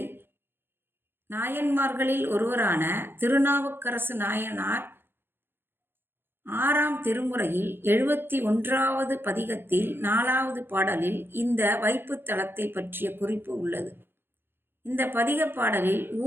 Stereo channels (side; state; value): left; late; 0.10 ms